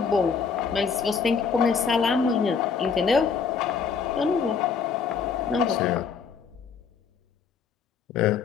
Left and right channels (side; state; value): right; quieter; 5.9 dB